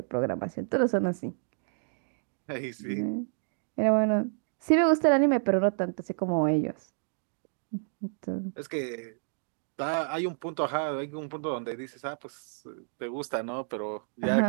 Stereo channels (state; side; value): silent; left; digital silence